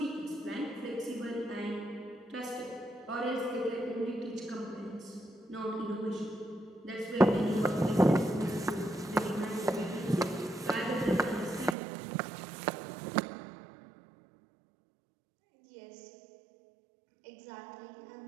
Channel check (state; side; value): drops out; left; at 11.8 s